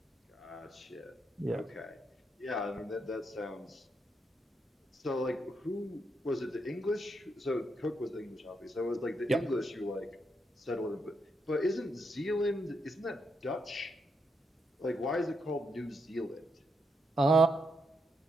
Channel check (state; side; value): normal; both; correlation 0.80